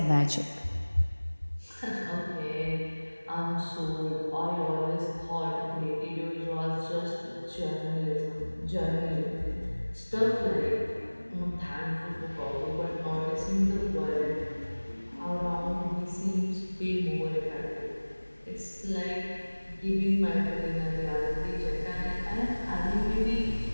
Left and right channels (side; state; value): both; inverted; correlation -1.00